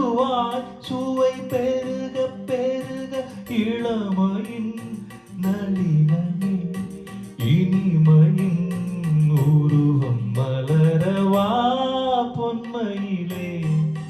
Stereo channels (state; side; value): identical; both; correlation 1.00